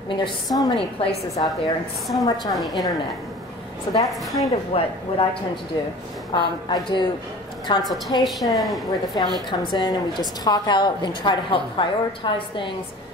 I mean, there's so many places out there and so much on the internet. So that's kind of what I tend to do. I do consultation where the family comes in and we just talk out and try to help prioritize things.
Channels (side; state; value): both; normal; correlation 0.42